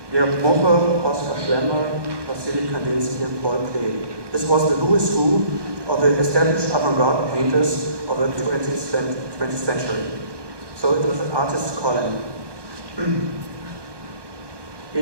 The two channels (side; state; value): left; late; 1.2 ms